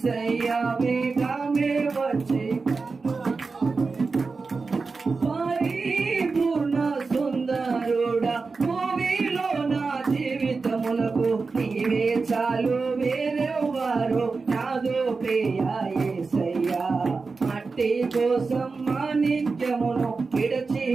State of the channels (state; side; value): quieter; left; 4.3 dB